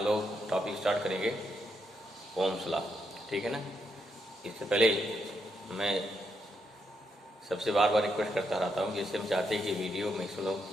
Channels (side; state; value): both; normal; correlation 0.80